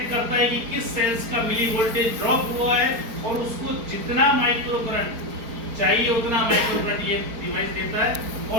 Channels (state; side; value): late; left; 4.4 ms